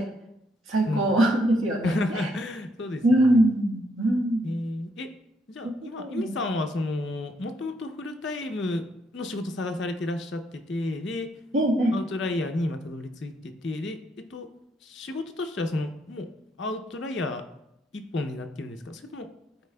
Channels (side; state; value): both; normal; correlation 0.74